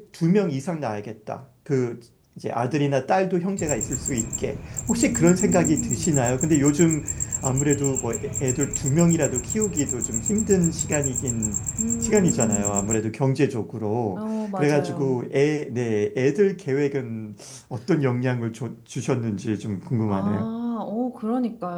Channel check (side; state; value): both; identical; correlation 1.00